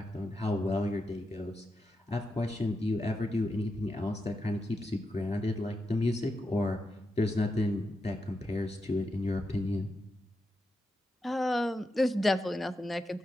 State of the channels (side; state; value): both; normal; correlation 0.87